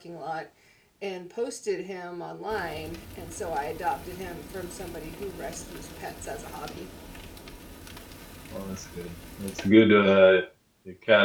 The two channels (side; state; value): both; identical; correlation 1.00